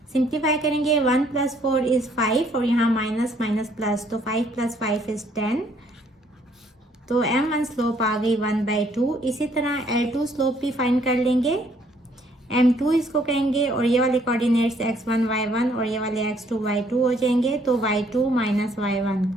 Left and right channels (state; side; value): normal; both; correlation 0.65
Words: सिंप्लीफाई करेंगे 1 प्लस 4 इज 5 और यहाँ माइनस माइनस प्लस, तो 5 प्लस 5 इज 10। तो m1 स्लोप आ गई 1/2। इसी तरह L2 स्लोप भी फाइंड कर लेंगे। m2 इसको कहेंगे और ये वाले कोऑर्डिनेट्स x1 y1 और ये वाले x2 y2 हो जाएंगे। तो y2 minus y1